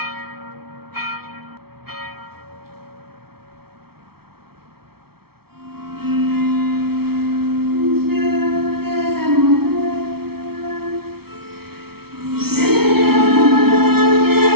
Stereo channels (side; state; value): left; late; 0.95 ms